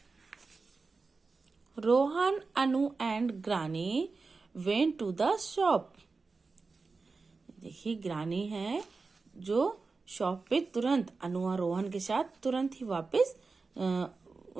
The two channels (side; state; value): left; quieter; 4.2 dB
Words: Rohan, Anu and granny went to the shop. देखिए ग्रानी है जो शॉप पे तुरंत अनु और रोहन के साथ तुरंत ही वापस